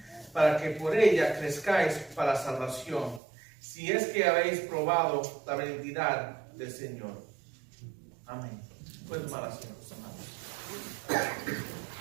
para que por ella crezcáis para salvación, si es que habéis probado la benignidad del Señor. Amén. Pueden tomar asiento, hermanos.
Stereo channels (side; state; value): left; drops out; at 3.2 s